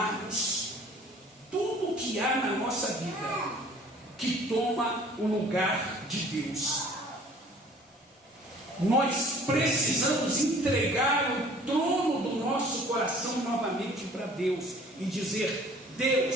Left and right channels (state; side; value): normal; both; correlation 0.51